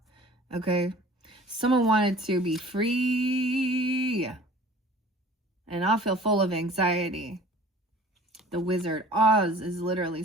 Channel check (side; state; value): both; normal; correlation 0.47